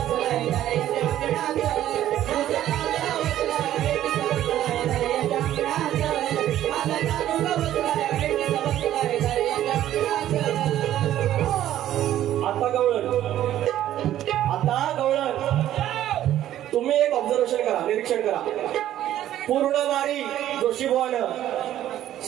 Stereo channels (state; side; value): quieter; left; 12.4 dB